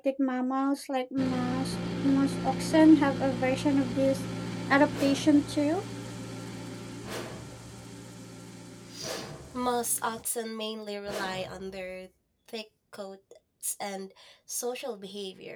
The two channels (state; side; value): identical; both; correlation 1.00